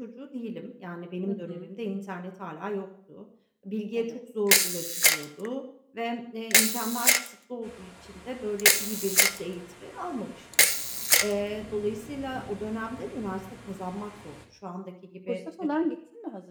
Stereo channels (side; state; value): both; identical; correlation 1.00